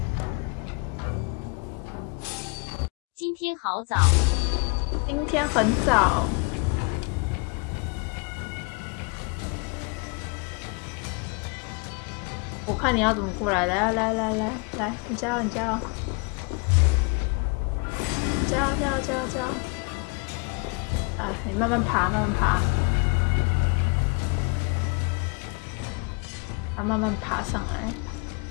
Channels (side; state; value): right; quieter; 32.4 dB